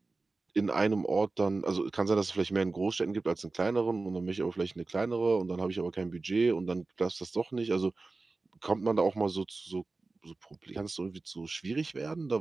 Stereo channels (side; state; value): left; quieter; 3.6 dB